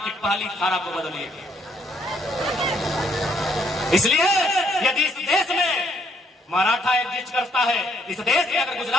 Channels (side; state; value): both; normal; correlation 0.69